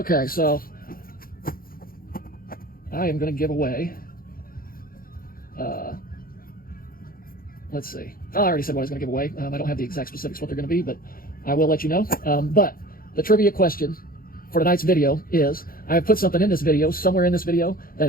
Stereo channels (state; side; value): late; right; 0.42 ms